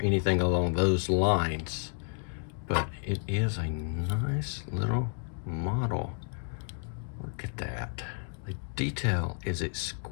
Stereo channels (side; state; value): right; silent; 56 dB below the other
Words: anything along those lines, but it is a nice little model. Look at that. The detail is